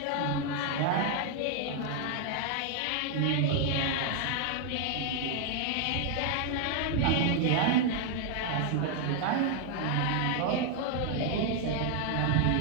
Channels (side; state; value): both; different; correlation 0.00